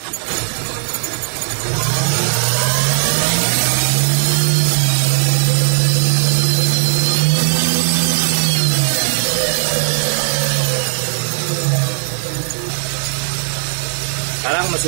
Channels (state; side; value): silent; left; digital silence